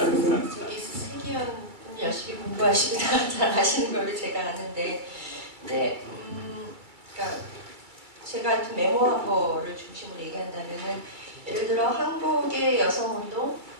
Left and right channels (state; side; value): late; left; 2.2 ms